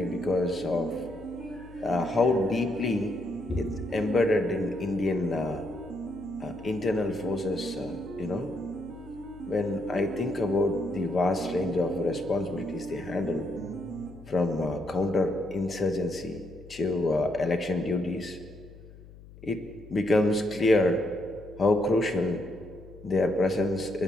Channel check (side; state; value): left; noise; hum, 19 dB below the sound